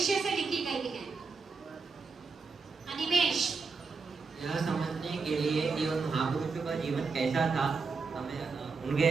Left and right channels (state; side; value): quieter; left; 4.7 dB